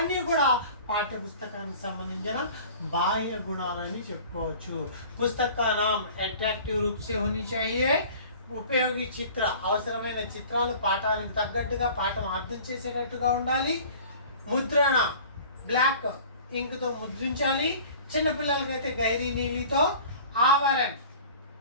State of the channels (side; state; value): both; inverted; correlation -0.44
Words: కూడా పాఠ్య పుస్తకానికి సంబంధించిన బాహ్య గుణాలని చెప్పుకోవచ్చు. పుస్తకానాం అట్రాక్టివ్ రూప్ సే హోనీ చాహియే. ఉపయోగి చిత్ర అవసరమైన చిత్రాలు పాఠానికి తగ్గట్టుగా పాఠం అర్థం చేసేటట్టుగా ఉండాలి. ముద్రణ బ్లాక్ ఇంక్తో ముద్రించాలి. చిన్నపిల్లలకైతే గైరీ నీలితో. ఆవరణ